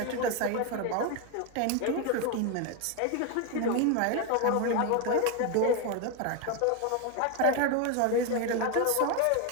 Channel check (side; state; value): both; different; correlation 0.02